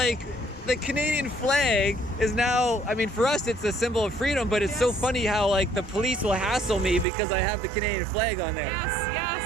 the Canadian flag is now. I mean, for us, it's a symbol of freedom. But it's so funny how like the police will hassle me because I have the Canadian flag on there. Yes.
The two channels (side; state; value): left; drops out; at 7.1 s